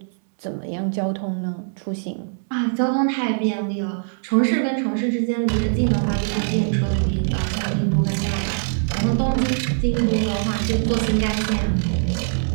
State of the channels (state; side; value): silent; left; 63 dB below the other